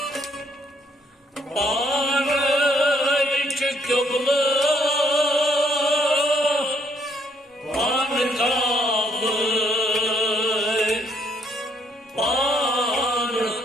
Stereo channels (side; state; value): both; normal; correlation 0.69